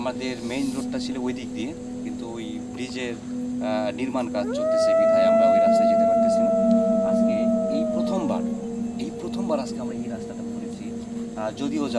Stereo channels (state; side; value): identical; both; correlation 1.00